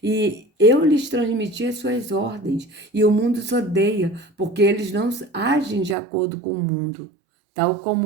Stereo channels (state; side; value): drops out; left; at 6.0 s